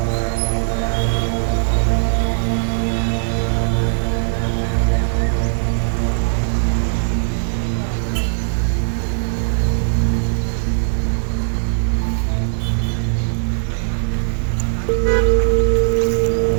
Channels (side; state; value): left; silent; 67 dB below the other